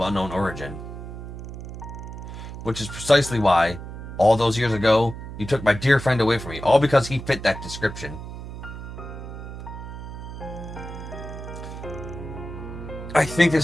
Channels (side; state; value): right; noise; hum, 10 dB below the sound